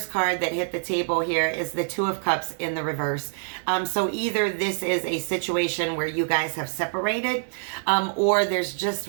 card that hit the table here is the Two of Cups in the reverse. So either this is a situation where you guys have separated, or there's just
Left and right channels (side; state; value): left; silent; 61 dB below the other